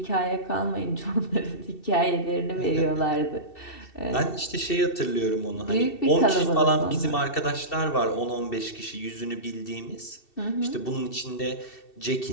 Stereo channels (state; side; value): late; right; 2.7 ms